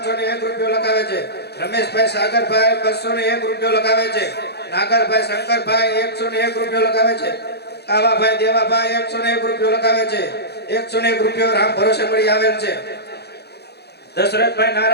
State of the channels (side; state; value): right; late; 0.48 ms